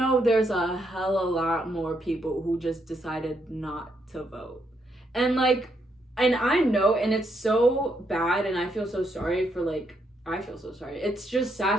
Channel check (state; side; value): normal; both; correlation 0.77